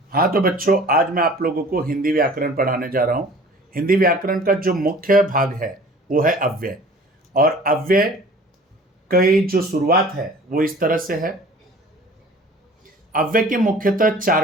हाँ तो बच्चों, आज मैं आप लोगों को हिंदी व्याकरण पढ़ाने जा रहा हूँ। हिंदी व्याकरण का जो मुख्य भाग है वो है अव्यय। और अव्यय की जो शुरुआत है वो इस तरह से है। अव्यय के मुख्यतः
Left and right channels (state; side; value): normal; both; correlation 0.47